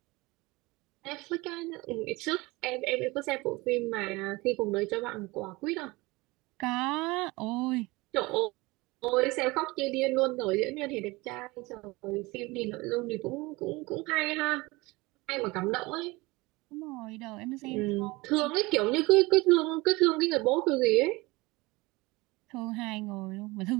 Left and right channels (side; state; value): left; quieter; 22.7 dB